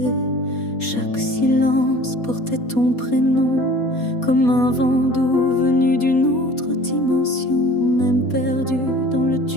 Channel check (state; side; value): late; right; 4.2 ms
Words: Chaque silence portait ton prénom, comme un vent doux venu d'une autre dimension. Même perdu dans le